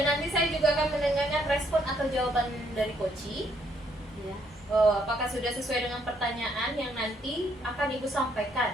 nanti saya juga akan mendengarkan respon atau jawaban dari coachee. Ya. Apakah sudah sesuai dengan pertanyaan yang nanti akan Ibu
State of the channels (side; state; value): both; normal; correlation 0.70